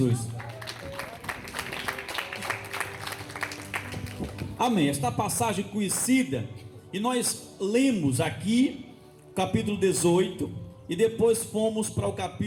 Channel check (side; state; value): both; identical; correlation 1.00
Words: Amém. Esta passagem conhecida, e nós lemos aqui capítulo 18 e depois fomos para o